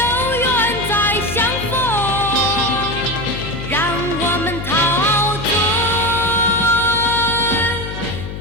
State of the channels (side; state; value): left; noise; hum, 8 dB below the sound